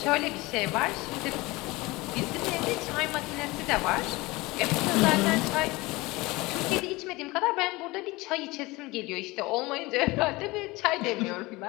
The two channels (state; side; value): quieter; right; 21.9 dB